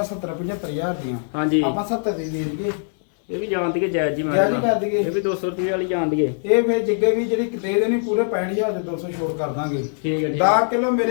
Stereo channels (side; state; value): right; silent; 63 dB below the other